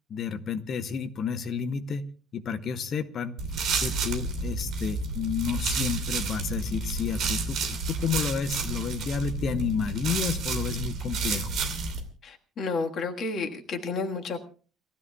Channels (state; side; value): normal; both; correlation 0.51